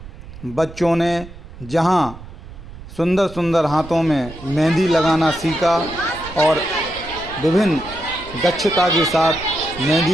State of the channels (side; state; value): right; noise; rumble, 15 dB below the sound